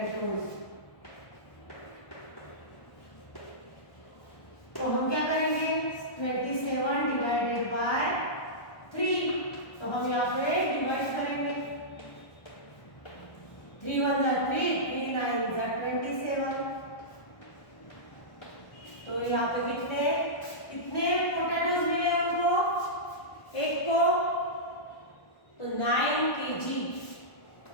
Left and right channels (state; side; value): late; right; 1.2 ms